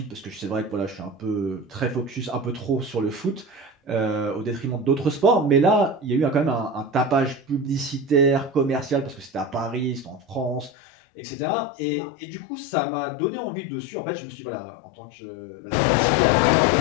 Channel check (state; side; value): drops out; right; at 10.7 s